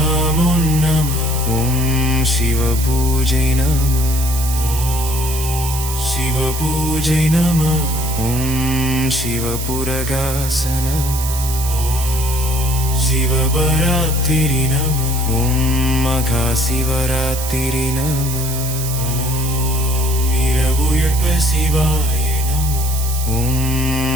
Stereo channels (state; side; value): noise; right; hiss, 7 dB below the sound